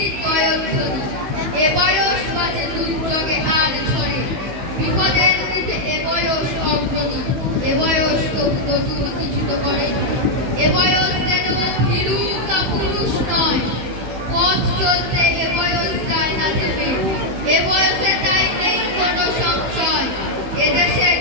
জয়ধ্বনি, এ বয়স বাজে দুর্যোগে আর ঝরে। বিপদের মুখে এ বয়স অগ্রণী, এ বয়স তবু নতুন কিছু তো করে। এ বয়স যেন ভীরু কাপুরুষ নয়, পথ চলতে এ বয়স যায় না থেমে। এ বয়সে তাই নেই কোনো সংশয়, এদেশের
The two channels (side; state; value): left; late; 16 ms